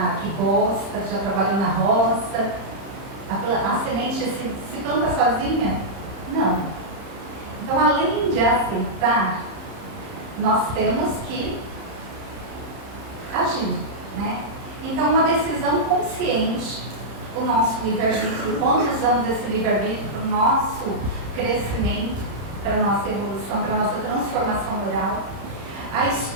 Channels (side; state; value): left; late; 30 ms